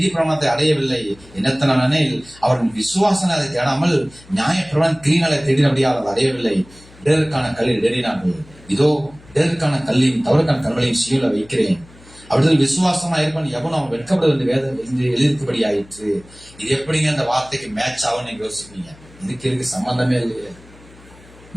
பிரமாணத்தை அடையவில்லை. என்னத்தனானெனில் அவர்கள் விசுவாசனை அதை தேடாமல் நியாய பிரமாணம் கிரீனாலை தேடினபடியால் அதை அடையவில்லை. இடருக்கான கல்லில் தேடினார்கள். இதோ இடருக்கான கல்லையும் தவறுக்கான கல்லையும் சீல வைக்கிறேன். அவர்கள் விசுவாசமா இருப்பான் எவனும் அவன் வெட்கப்படுவது வேதம் எழுதிருக்கும்படி ஆயிற்று. இது எப்படிங்க அந்த வார்த்தைக்கு மேட்ச் ஆகும் நீங்க யோசிப்பீங்க. இதுக்கு சம்பந்தமே இல்லையே.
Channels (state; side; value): noise; left; hum, 24 dB below the sound